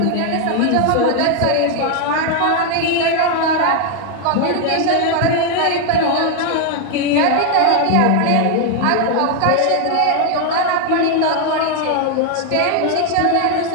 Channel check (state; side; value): different; both; correlation 0.00